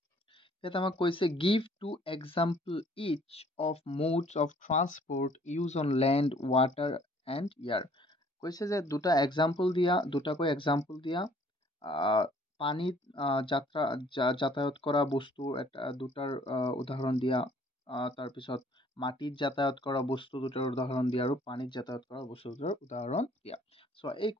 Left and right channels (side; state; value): both; normal; correlation 0.58